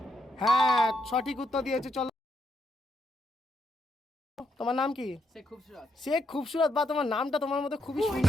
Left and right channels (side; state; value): both; normal; correlation 0.78